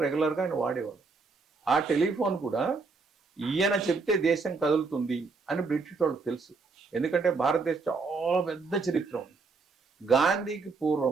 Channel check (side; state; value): left; quieter; 4.3 dB